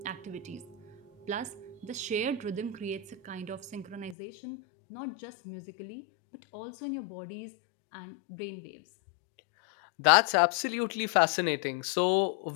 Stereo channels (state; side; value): drops out; right; at 4.2 s